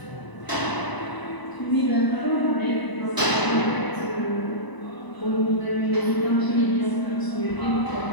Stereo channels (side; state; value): right; late; 1.0 ms